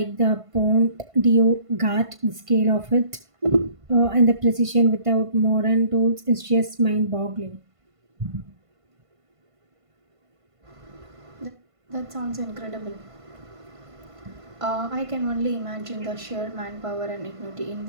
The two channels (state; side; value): late; left; 1.5 ms